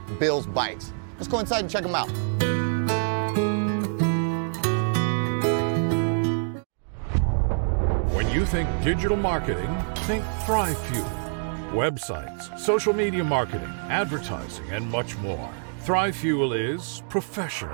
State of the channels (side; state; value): left; silent; digital silence